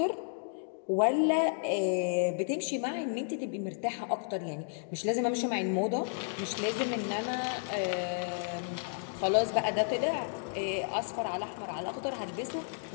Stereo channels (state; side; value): silent; right; digital silence